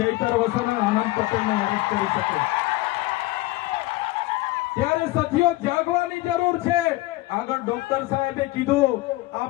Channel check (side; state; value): right; quieter; 19.0 dB